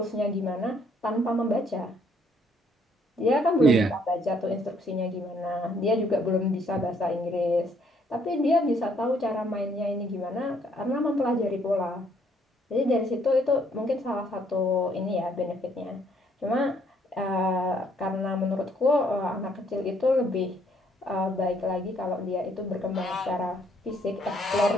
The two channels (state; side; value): normal; both; correlation 0.66